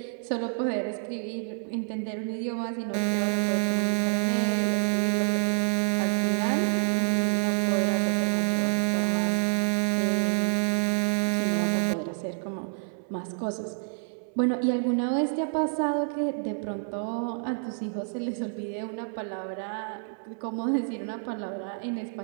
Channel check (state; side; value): silent; left; 59 dB below the other